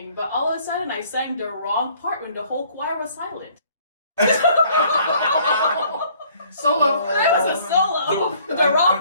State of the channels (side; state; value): both; inverted; correlation -0.59